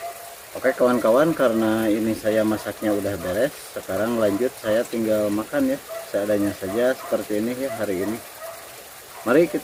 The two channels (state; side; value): identical; both; correlation 1.00